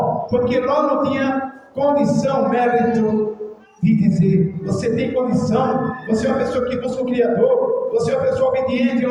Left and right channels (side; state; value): both; identical; correlation 1.00